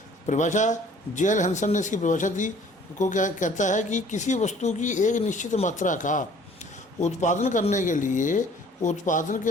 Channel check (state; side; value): normal; both; correlation 0.54